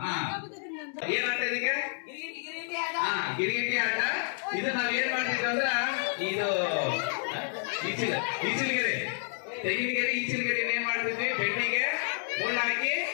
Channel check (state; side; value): silent; right; 58 dB below the other